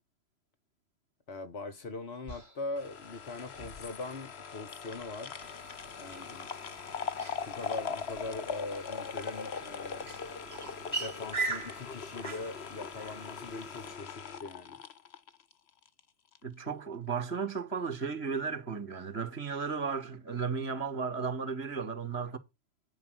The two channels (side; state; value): right; late; 3.0 ms